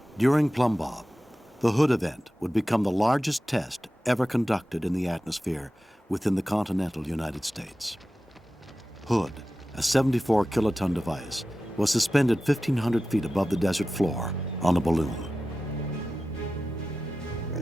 During Plum Bob, the Hood event would become the largest test ever conducted in the atmosphere within the continental United States. Hood, a 74-kiloton device, was suspended 1,500 feet above the desert floor on a balloon.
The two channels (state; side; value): normal; both; correlation 0.94